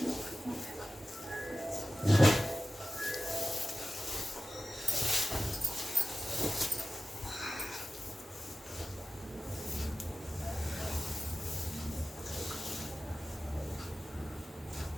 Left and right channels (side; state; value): both; normal; correlation 0.95